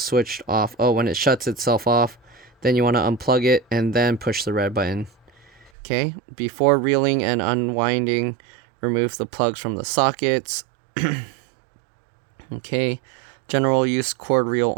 off. Oh, when it shuts itself off, then you want to unplug it and then push the red button. Okay, before reeling and unwinding, remove the plugs from the sockets. Okay, general use cord reel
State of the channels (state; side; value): drops out; left; at 5.7 s